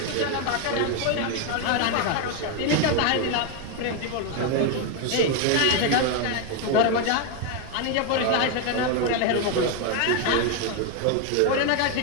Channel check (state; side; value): different; both; correlation 0.01